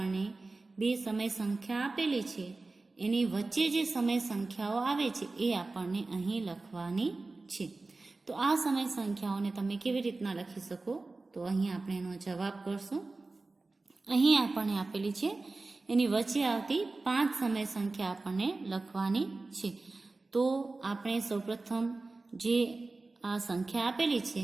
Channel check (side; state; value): left; quieter; 3.4 dB